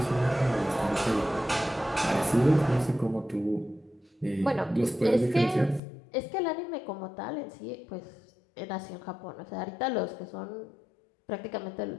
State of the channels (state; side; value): drops out; right; at 5.8 s